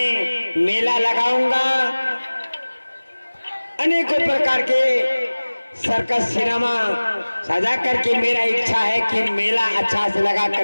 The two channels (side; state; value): both; inverted; correlation -1.00